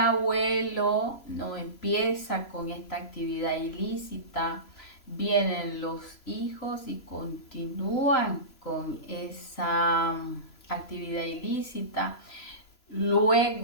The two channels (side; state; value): right; late; 3.0 ms